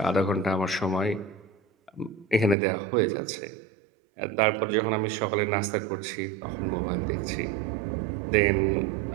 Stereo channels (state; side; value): drops out; left; at 2.6 s